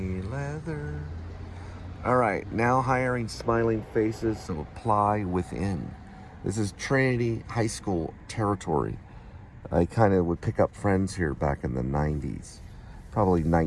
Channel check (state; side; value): identical; both; correlation 1.00